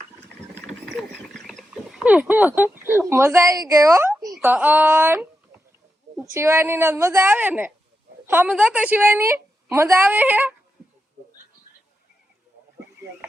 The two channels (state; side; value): normal; both; correlation 0.87